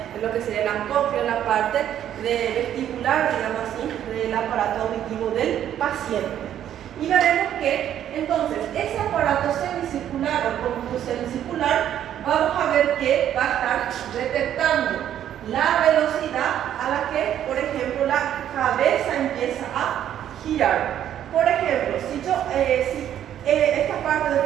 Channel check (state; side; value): quieter; left; 10.7 dB